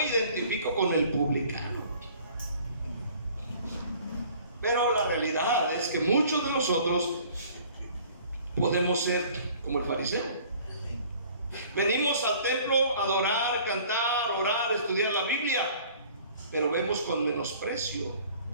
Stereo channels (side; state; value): both; inverted; correlation -0.52